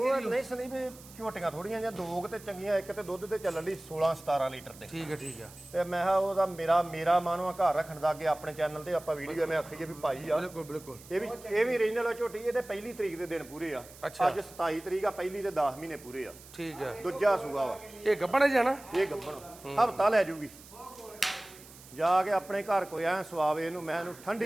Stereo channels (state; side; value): noise; right; hiss, 20 dB below the sound